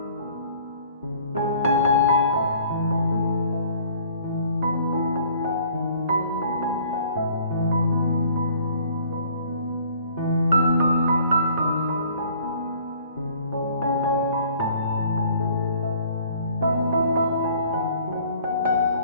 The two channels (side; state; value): both; inverted; correlation -0.55